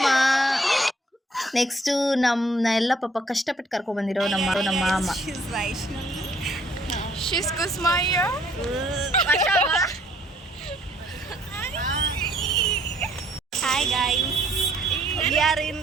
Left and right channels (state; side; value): normal; both; correlation 0.63